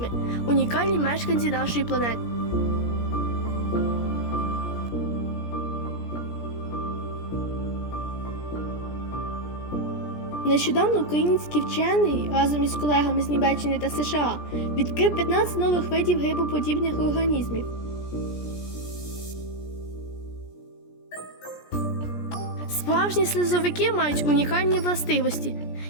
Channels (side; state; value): right; late; 17 ms